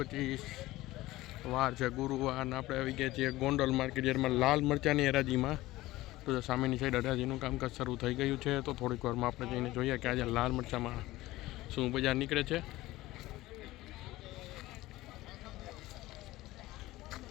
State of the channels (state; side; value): quieter; right; 17.7 dB